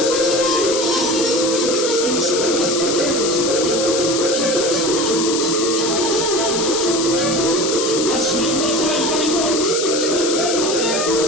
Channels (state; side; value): noise; left; hiss, 2 dB below the sound